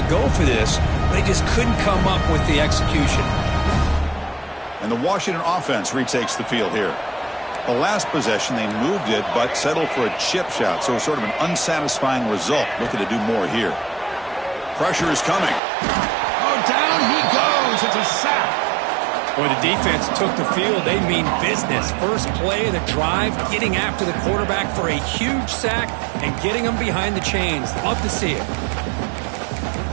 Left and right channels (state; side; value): drops out; left; at 15.6 s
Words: go for this. They just couldn't come up with the execution. And the Washington offense retakes the field here. The last possession, they moved it, but settled for a chip shot, so sort of an unsatisfying result. Looking to do more here. Pressure is coming. Oh, down he goes. It's a sack. Boy, the defense took the field. They mean business. First play of the drive, getting after the quarterback for a huge sack and getting him behind the chains. Love to see it.